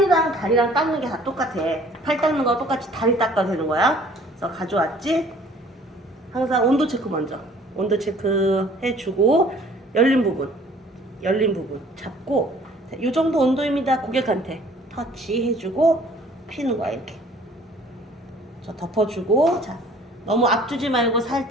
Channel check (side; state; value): both; normal; correlation 0.54